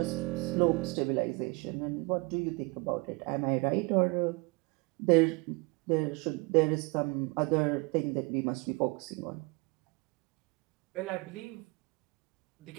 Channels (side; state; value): left; quieter; 28.1 dB